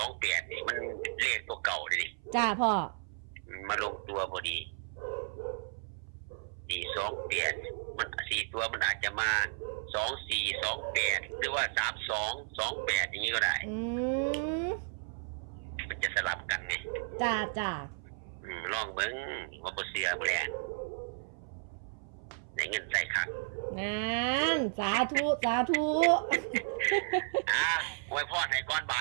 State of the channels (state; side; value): silent; left; 55 dB below the other